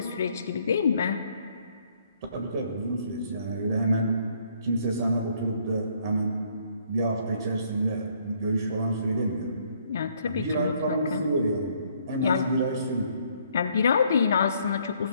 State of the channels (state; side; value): inverted; both; correlation -0.66